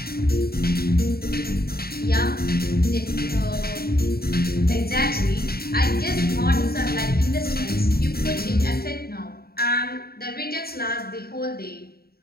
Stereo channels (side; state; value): right; late; 0.45 ms